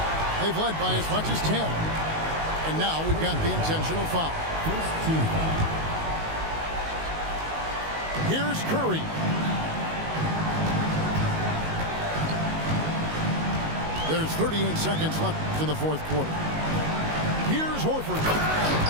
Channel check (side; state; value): left; late; 19 ms